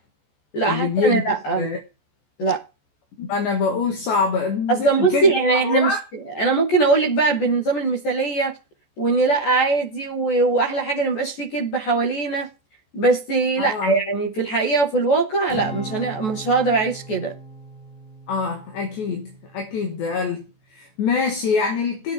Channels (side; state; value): right; late; 14 ms